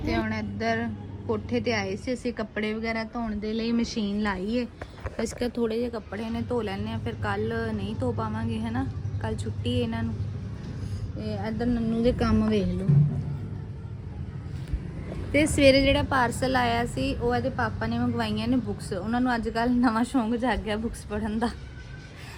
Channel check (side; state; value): both; identical; correlation 1.00